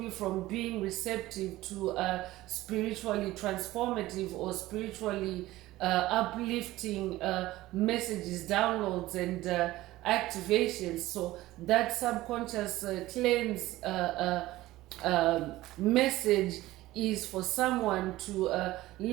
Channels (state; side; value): quieter; left; 17.0 dB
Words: from being receptive to spiritually transformative or spiritually uplifting messages, downloads, and activations. So that subconscious cleanse message is for someone to